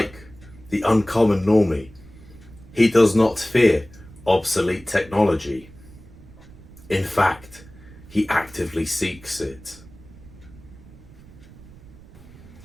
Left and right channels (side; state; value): right; noise; rumble, 21 dB below the sound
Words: the uncommon normie, he does not fear obsolete technology. In fact, he actively seeks it.